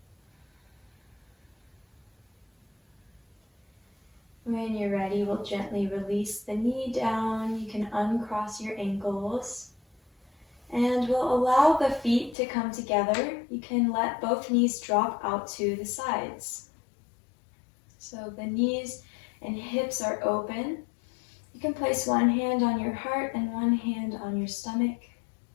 When you're ready, we'll gently release the knee down. You can uncross your ankles. And we'll allow the feet to come together. You can let both knees drop out to the sides. So the knees and hips are open. You can place one hand on your heart and one hand on your stomach.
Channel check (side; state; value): right; drops out; at 12.4 s